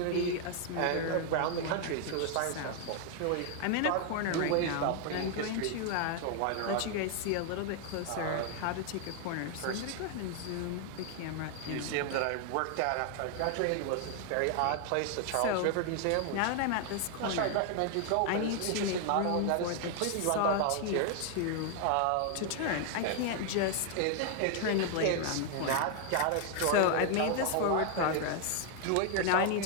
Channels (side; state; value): both; different; correlation 0.00